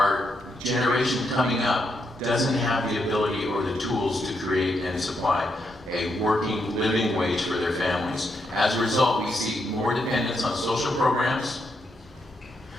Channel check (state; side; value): normal; both; correlation 0.80